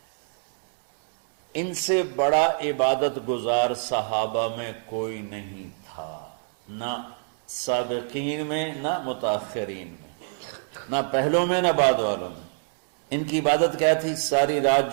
ان سے بڑا عبادت گزار صحابہ میں کوئی نہیں تھا، نہ سابقین میں نہ متاخرین میں، نہ پہلوں میں نہ بعد والوں میں۔ ان کی عبادت کیا تھی؟ ساری رات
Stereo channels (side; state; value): left; silent; digital silence